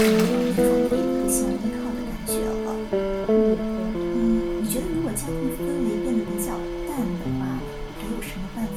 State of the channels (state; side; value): identical; both; correlation 1.00